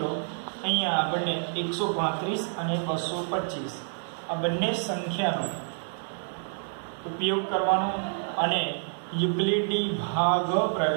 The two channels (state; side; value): silent; left; digital silence